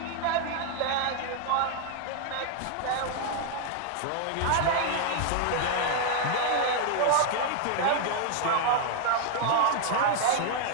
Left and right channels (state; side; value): different; both; correlation 0.00